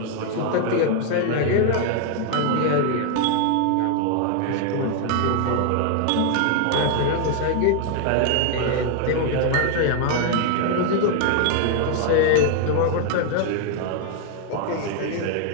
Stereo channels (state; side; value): different; both; correlation 0.00